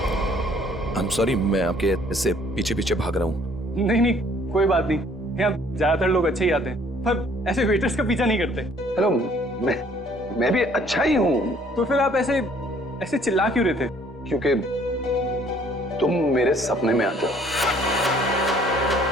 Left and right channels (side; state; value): both; normal; correlation 0.59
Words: आई एम सॉरी, मैं आपके ऐसे पीछे पीछे भाग रहा हूँ। नहीं नहीं, कोई बात नहीं। यहाँ ज्यादातर लोग अच्छे ही आते हैं, पर ऐसे वेटर्स का पीछा नहीं करते। हेलो, मैं भी अच्छा ही हूँ। तो फिर आप ऐसे ऐसे चिल्ला क्यों रहे थे? क्योंकि तुम मेरे सपने में आते हो।